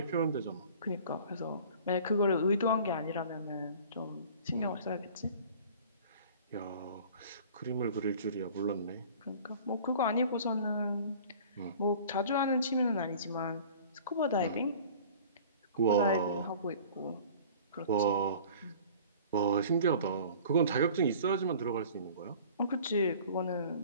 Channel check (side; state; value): both; inverted; correlation -0.45